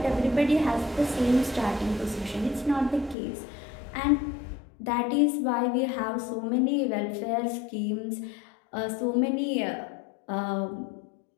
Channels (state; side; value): drops out; right; at 3.2 s